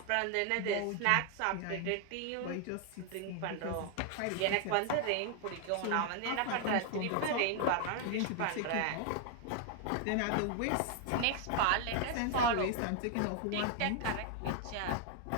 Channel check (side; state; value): both; different; correlation 0.00